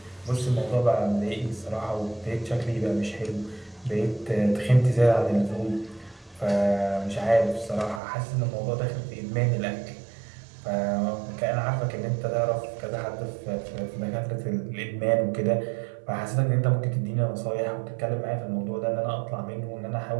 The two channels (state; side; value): drops out; left; at 8.0 s